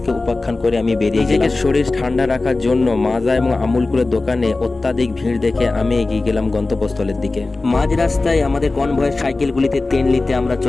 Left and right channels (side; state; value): right; quieter; 3.3 dB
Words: উপাখ্যান করে আমি বেরিয়ে গেলাম। শরীর ঠান্ডা রাখার জন্য মাজা এবং আমুলকুলের দোকানে অত্যাধিক ভিড় দেখে আমি এগিয়ে গেলাম গন্তব্যস্থলের দিকে। মাঝ রাস্তায় আমাদের কনভয়ের সাইকেলগুলিতে তেল নিতে আমরা